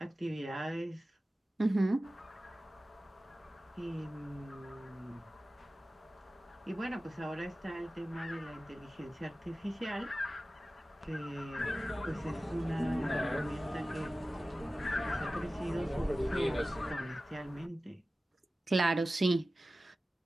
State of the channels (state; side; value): normal; both; correlation 0.96